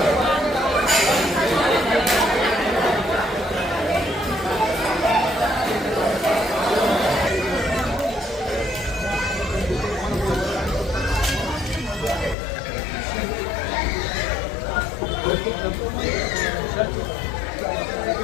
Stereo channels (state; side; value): drops out; right; at 12.4 s